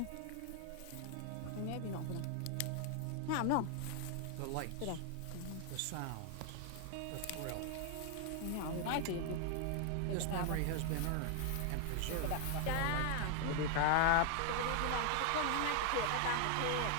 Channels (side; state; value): both; different; correlation 0.00